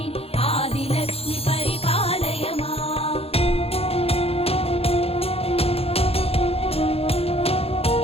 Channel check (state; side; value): late; right; 0.29 ms